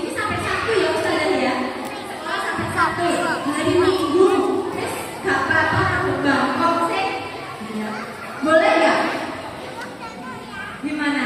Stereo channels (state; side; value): identical; both; correlation 1.00